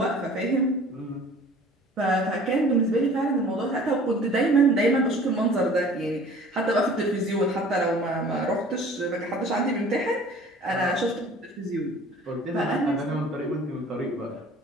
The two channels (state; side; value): normal; both; correlation 0.48